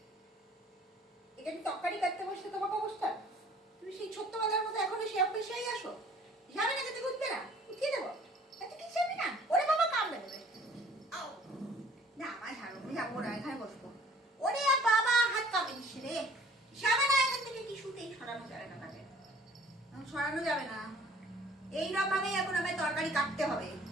এখানে তরকারি কাটতে বসতে তোমাকে অবস্থা, তুমি সেই ছোট্টবেলার মতো এখনো সে অফিসেই আসো। যাবে না, খেতে উঠবে না, উঠিয়ে দেবো। এত কি যাবে না? ওরে বাবা কামড়ে দেবে। না আমার ঝাড়ু যাবো না, এখানে বসবো। ওরে বাবা হাত কামড়ে দিচ্ছে রে। যাবে না এখান থেকে, কিছুতেই সরানো যাবে না তাকে, সরানো যাবে না। এইরকম ভাবেই এখন আমায় তরকারি কাটতে হবে,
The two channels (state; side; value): normal; both; correlation 0.53